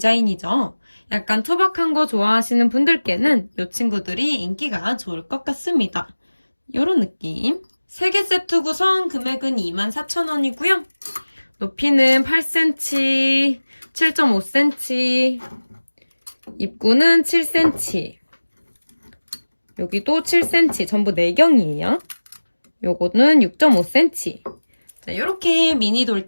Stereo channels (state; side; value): inverted; both; correlation -1.00